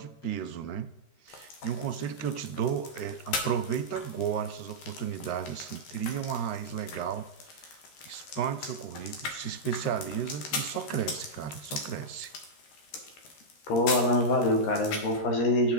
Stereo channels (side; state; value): right; late; 13 ms